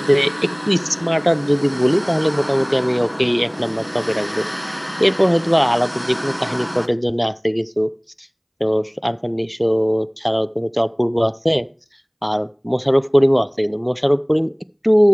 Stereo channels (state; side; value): identical; both; correlation 1.00